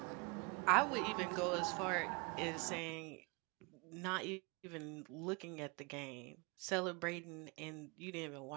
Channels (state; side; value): quieter; left; 29.7 dB